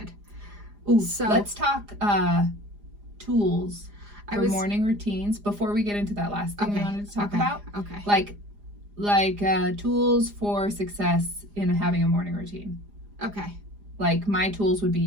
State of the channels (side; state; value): left; late; 4.9 ms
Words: Ooh, so let's talk tools for morning routines before we get into that last thing we wanted to talk about. Okay. Like tools for success in having a morning routine. Okay. Like my tools would